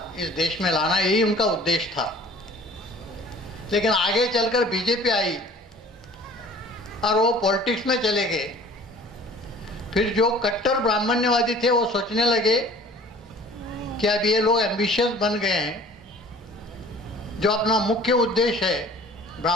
देश में लाना, यही उनका उद्देश्य था। लेकिन आगे चलकर बीजेपी आई और वो पॉलिटिक्स में चले गए। फिर जो कट्टर ब्राह्मण्यवादी थे वो सोचने लगे कि अब ये लोग एम्बिशियस बन गए हैं, जो अपना मुख्य उद्देश्य है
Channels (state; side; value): normal; both; correlation 0.48